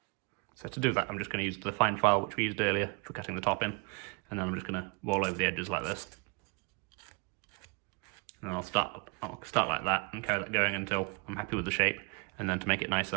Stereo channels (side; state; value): left; quieter; 30.5 dB